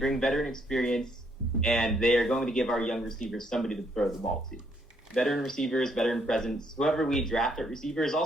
veteran experience, and they are going to give our young receivers somebody to throw the ball to. Veteran receivers, veteran presence, whoever we draft at receiver is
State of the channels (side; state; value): both; normal; correlation 0.71